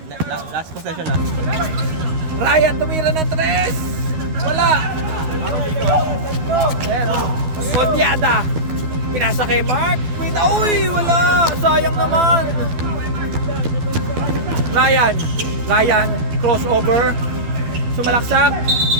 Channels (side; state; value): left; late; 12 ms